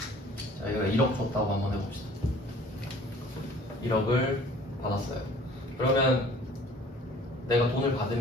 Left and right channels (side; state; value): both; normal; correlation 0.51